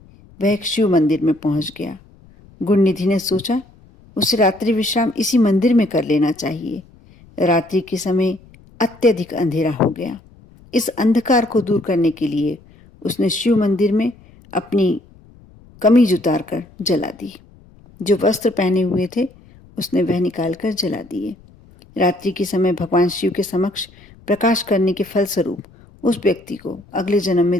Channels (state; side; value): noise; left; rumble, 26 dB below the sound